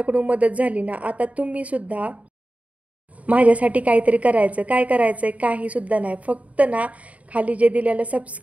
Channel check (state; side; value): late; left; 0.068 ms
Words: मदत झाली ना. आता तुम्ही सुद्धा माझ्यासाठी काहीतरी करायचं. काय करायचंय, काही सुद्धा नाही. फक्त ना खाली जे दिलेलं